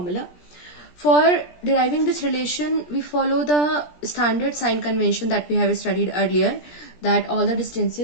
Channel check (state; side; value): late; right; 17 ms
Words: For deriving this relation, we follow the standard sign convention that we have studied earlier, that all the